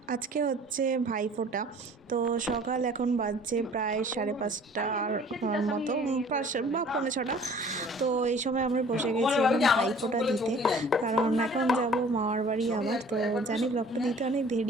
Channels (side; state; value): both; normal; correlation 0.50